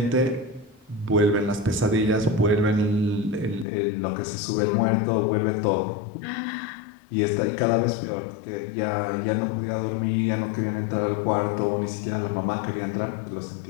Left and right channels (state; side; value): drops out; right; at 3.7 s